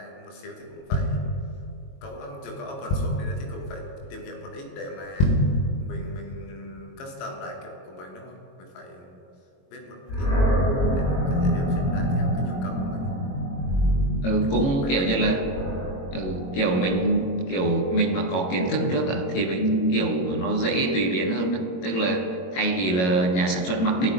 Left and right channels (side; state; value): right; late; 22 ms